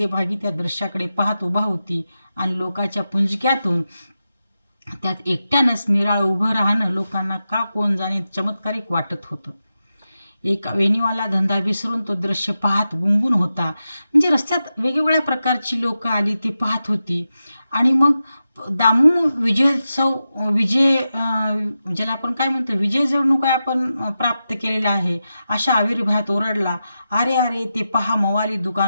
त्या दृश्याकडे पाहत उभा होती आणि लोकांच्या पुंजक्यातून त्यात एकट्यानंच निराळ उभं राहणं लोकांना का कोण जाणे चमत्कारिक वाटत होतं. एक वेणीवाला धंदा विसरून तो दृश्य पाहत गुंगून होता. म्हणजे रस्त्यात वेगवेगळ्या प्रकारची लोक आली, ती पाहत होती. आणि मग दामू ज्याला आपण काय म्हणतो, विजय जणू काय आपण प्राप्त केलेला आहे अशा आविर्भावात ओरडला, अरे अरे ते पहा मवाली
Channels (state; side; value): inverted; both; correlation -0.91